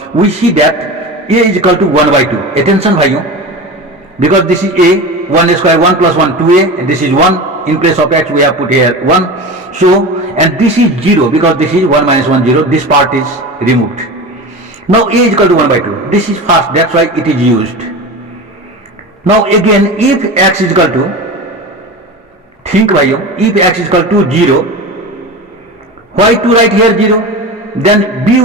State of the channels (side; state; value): both; normal; correlation 0.29